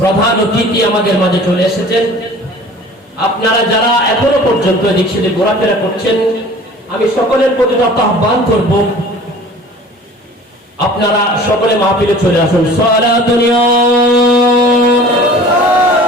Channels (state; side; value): normal; both; correlation 0.45